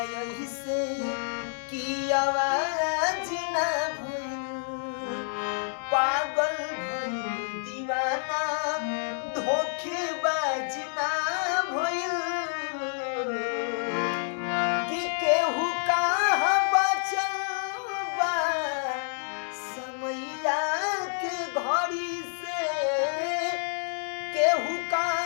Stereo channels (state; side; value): silent; right; digital silence